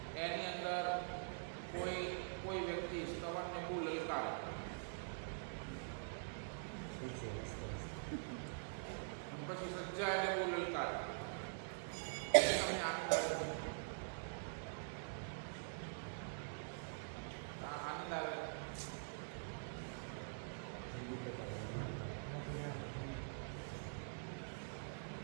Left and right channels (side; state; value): left; silent; digital silence